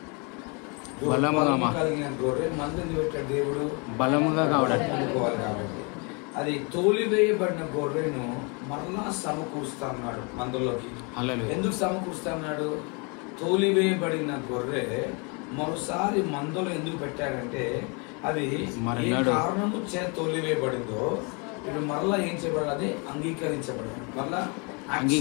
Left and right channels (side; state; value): right; quieter; 32.7 dB